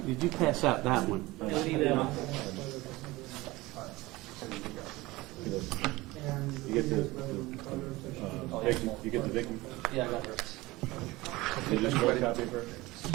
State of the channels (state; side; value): quieter; left; 20.3 dB